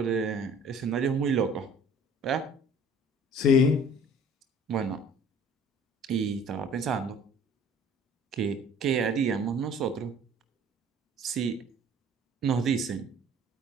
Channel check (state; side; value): normal; both; correlation 0.50